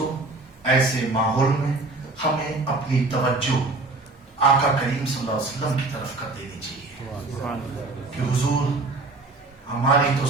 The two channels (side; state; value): left; quieter; 3.2 dB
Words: ایسے ماحول میں ہمیں اپنی توجہ آقا کریم صلی اللہ علیہ وسلم کی طرف کر دینی چاہیے کہ حضور ہماری تو